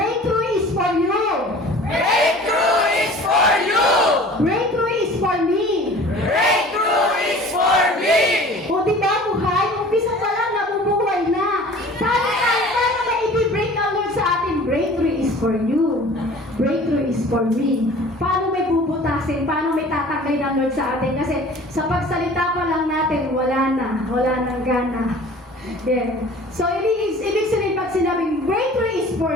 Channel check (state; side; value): normal; both; correlation 0.45